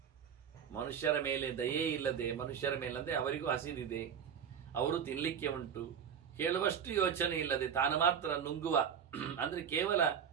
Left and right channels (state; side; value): quieter; left; 7.8 dB